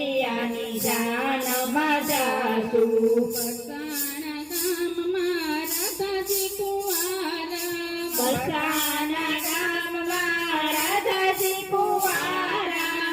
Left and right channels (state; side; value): identical; both; correlation 1.00